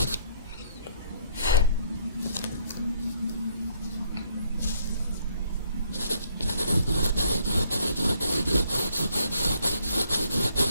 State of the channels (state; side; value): inverted; both; correlation -0.67